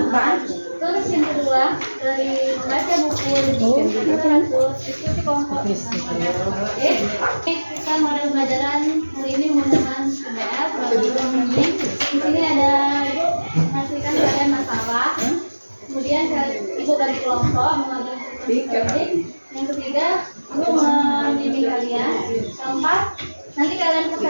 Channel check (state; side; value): inverted; both; correlation -1.00